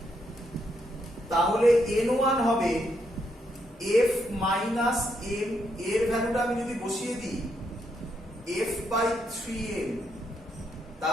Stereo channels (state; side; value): normal; both; correlation 0.78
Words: তাহলে n1 হবে f মাইনাস m, এর ভ্যালুটা আমি যদি বসিয়ে দিই f বাই 3m,